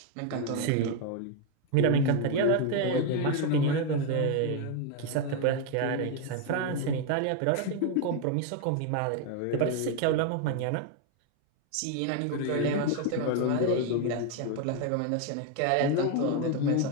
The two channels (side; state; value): both; different; correlation 0.01